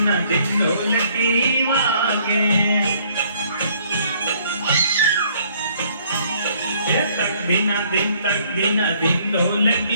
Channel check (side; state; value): both; inverted; correlation -0.63